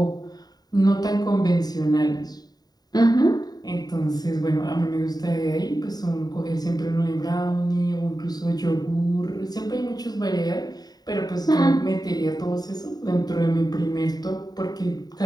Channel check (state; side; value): late; right; 0.19 ms